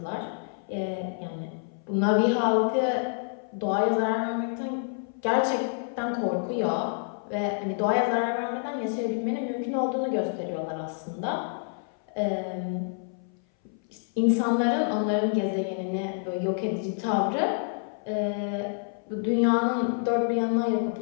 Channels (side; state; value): right; silent; 57 dB below the other